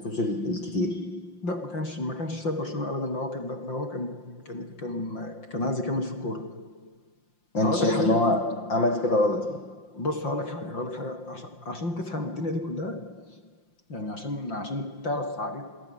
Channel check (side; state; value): right; late; 5.8 ms